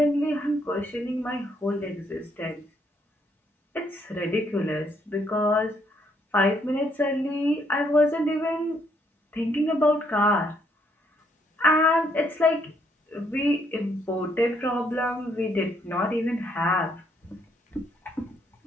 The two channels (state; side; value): normal; both; correlation 0.71